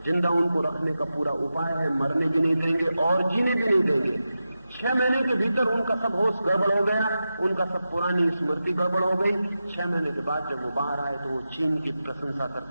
जिंदा उनको रखने का पूरा उपाय है, मरने भी नहीं देंगे और जीने भी नहीं देंगे। 6 महीने के भीतर उनका सब होश गड़बड़ हो गया, उनका सब पुरानी स्मृति गड़बड़ हो गई। 6 महीने के बाद जब वो बाहर आए तो वो चीन की प्रशंसा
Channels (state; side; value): inverted; both; correlation -0.91